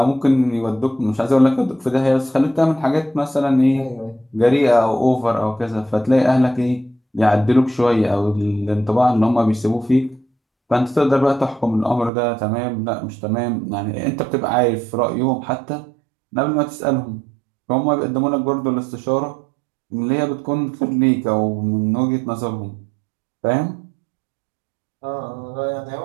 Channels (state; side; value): drops out; left; at 12.1 s